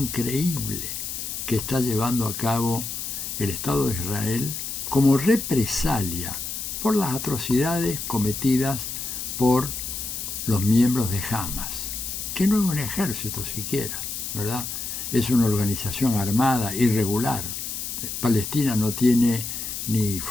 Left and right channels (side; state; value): left; noise; hiss, 5 dB below the sound